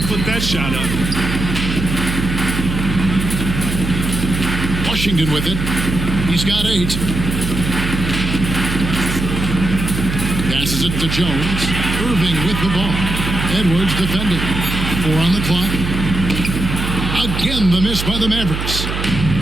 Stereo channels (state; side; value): noise; right; hum, 4 dB below the sound